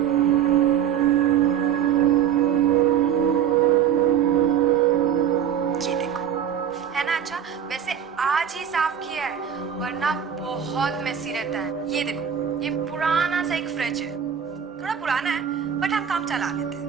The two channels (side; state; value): left; quieter; 8.9 dB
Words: ये देखो, है ना अच्छा। वैसे आज ही साफ किया है, वरना बहुत मेसी रहता है। ये देखो, ये पुराना सा एक फ्रिज है, थोड़ा पुराना है बट हम काम चला लेते हैं।